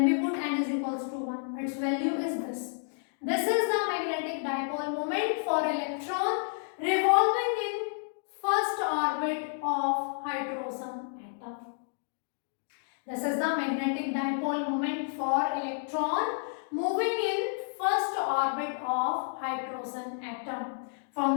we put n is equals to 1, its value is this. This is the magnetic dipole moment for electron revolving in first orbit of hydrogen atom. This is the magnetic dipole moment for electron moving in first orbit of hydrogen atom.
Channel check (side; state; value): right; silent; digital silence